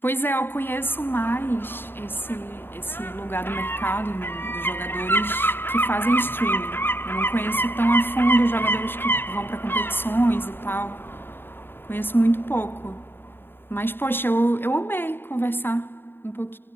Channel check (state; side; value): late; right; 0.10 ms